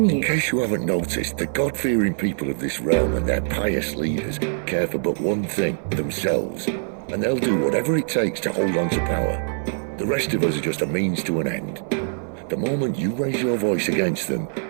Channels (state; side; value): silent; left; 61 dB below the other